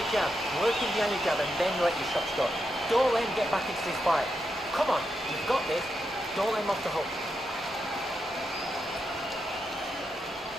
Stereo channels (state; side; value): normal; both; correlation 0.85